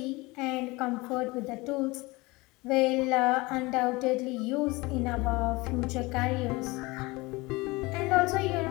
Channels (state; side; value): quieter; right; 23.1 dB